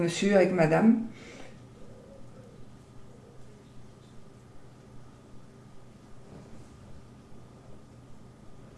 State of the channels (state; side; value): identical; both; correlation 1.00